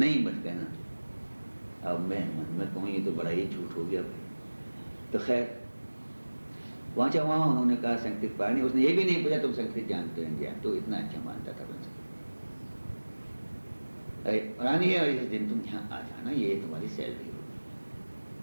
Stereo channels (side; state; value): both; inverted; correlation -1.00